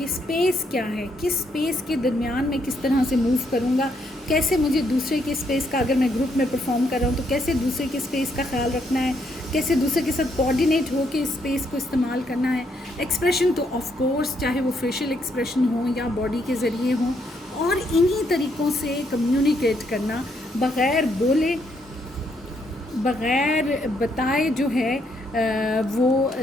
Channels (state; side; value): normal; both; correlation 0.74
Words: اسپیس کیا ہے, کس اسپیس کے درمیان میں کس طرح سے موو کروں گا, کیسے مجھے دوسرے کے اسپیس کا, اگر میں گروپ میں پرفارم کر رہا ہوں تو کیسے دوسرے کے اسپیس کا خیال رکھنا ہے, کیسے دوسرے کے ساتھ کوآرڈینیٹ ہو کے اسپیس کو استعمال کرنا ہے. ایکسپریشن تو آف کورس چاہے وہ فیشیل ایکسپریشن ہوں یا باڈی کے ذریعے ہوں, اور انہی طریقوں سے کمیونیکیٹ کرنا بغیر بولے بغیر بتائے جو ہے وہ